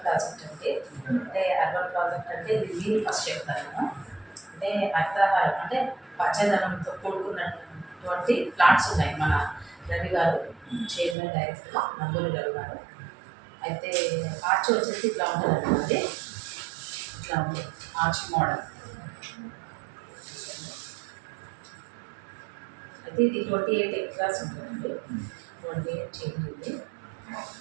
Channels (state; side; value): drops out; left; at 11.2 s